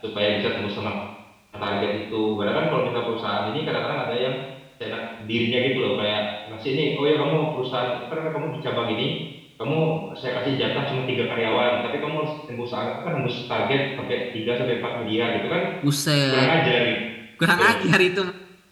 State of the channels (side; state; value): both; identical; correlation 1.00